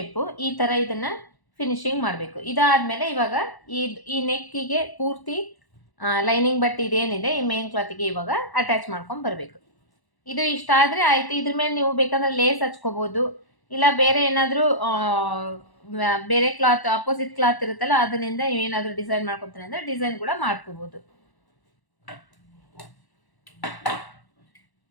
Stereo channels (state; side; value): late; right; 1.1 ms